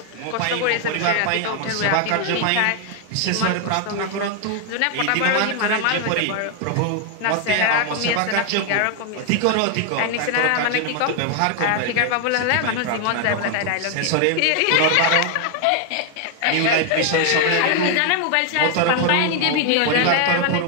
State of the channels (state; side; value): different; both; correlation 0.00